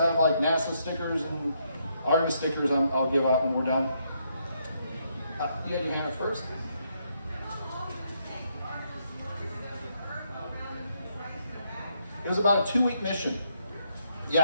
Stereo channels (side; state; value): both; inverted; correlation -0.75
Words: like NASA stickers and Artemis stickers I'll give out when we're done. You had your hand up first? It was about a 2-week mission.